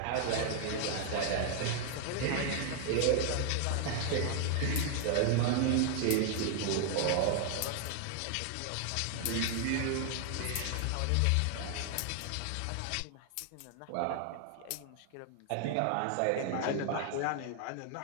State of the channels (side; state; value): both; different; correlation 0.00